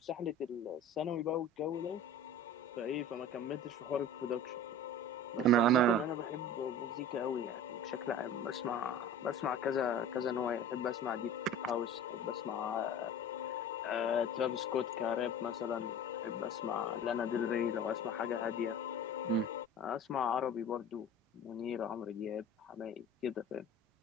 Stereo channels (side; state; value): both; normal; correlation 0.38